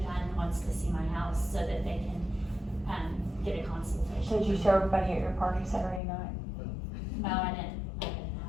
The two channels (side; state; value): right; drops out; at 6.0 s